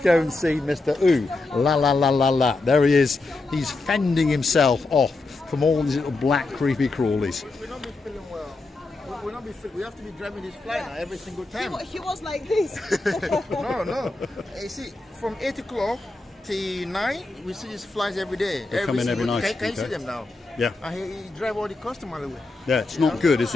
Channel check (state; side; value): quieter; right; 3.3 dB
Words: and see Mr. Ooh La La La La La. There he is. He's fending himself off from all these little black creepy crawlies. We'll not be feeling well. We'll not be feeling. We have to be driving this fly now every single time. He was like this. No. You see, from 8 o'clock till 9, we see these flies every day. They come in every single- night, Can you see okay. them now? Yeah. And he drive all the customers away. Yeah, it's not good, is